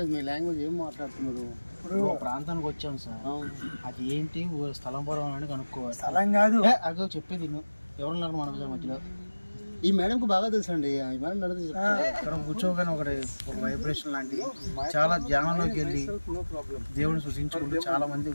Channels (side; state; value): both; inverted; correlation -1.00